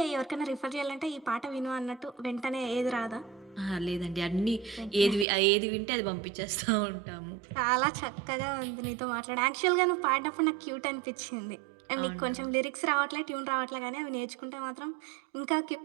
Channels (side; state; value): left; drops out; at 5.2 s